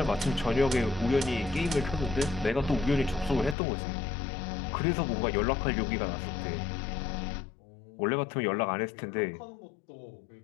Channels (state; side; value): drops out; right; at 3.6 s